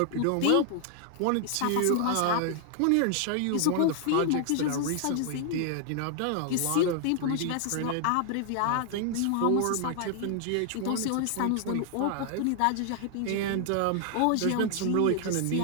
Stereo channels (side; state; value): both; different; correlation 0.00